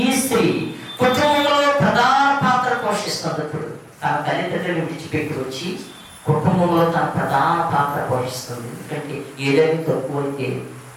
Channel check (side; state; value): both; identical; correlation 1.00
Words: ఈ స్త్రీ కుటుంబంలో ప్రధాన పాత్ర పోషిస్తుంది. ఇప్పుడు తన తల్లిదండ్రులు విడిచిపెట్టి వచ్చి కుటుంబంలో తన ప్రధాన పాత్ర పోషిస్తుంది. ఎందుకంటే ఏదైనా తక్కువైతే,